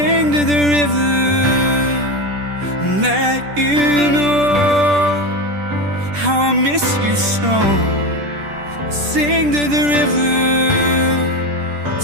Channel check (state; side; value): late; left; 10 ms